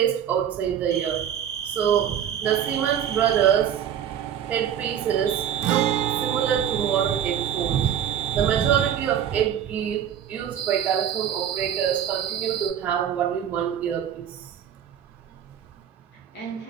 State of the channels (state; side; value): quieter; left; 9.4 dB